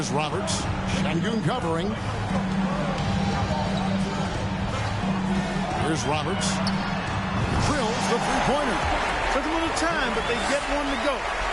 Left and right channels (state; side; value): identical; both; correlation 1.00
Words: Roberts. Sengun covering. Here's Roberts. Drills the three-pointer. Took a little time, but they get one to go.